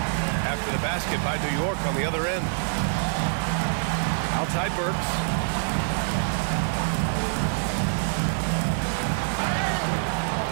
after the basket by New York on the other end. Outside Burks.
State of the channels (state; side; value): silent; left; 61 dB below the other